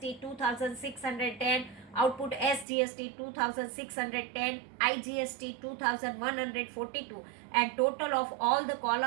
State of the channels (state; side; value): drops out; left; at 2.7 s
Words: 2,610, output SGST 2,610, IGST 2,142, and total of all the